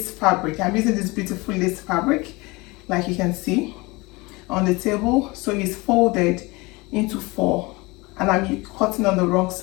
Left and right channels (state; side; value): quieter; right; 24.0 dB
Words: fabric. I'm using this beautiful lace fabric, like you can see on the table. So it's folded into 4, and I'm cutting on the wrong